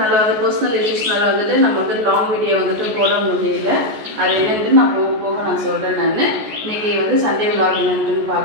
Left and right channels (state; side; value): late; left; 14 ms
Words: பர்சனல் இஷ்யூஸ்னால நம்ம லாங் வீடியோ போட முடியல. அது என்னன்ட்டு நான் போக போக நான் சொல்கிறேன். நான் இன்றைக்கி சண்டே விலாக் என்னன்ட்டுன்னு